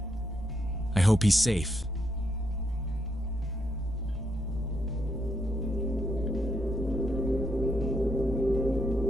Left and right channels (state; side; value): normal; both; correlation 0.78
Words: I hope he's safe.